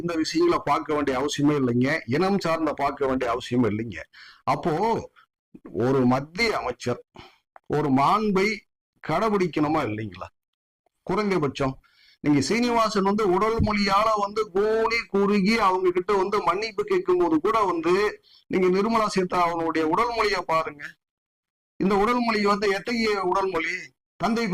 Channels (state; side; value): identical; both; correlation 1.00